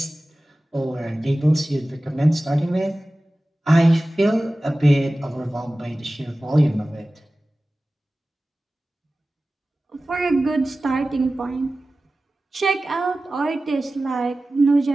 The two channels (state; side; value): normal; both; correlation 0.96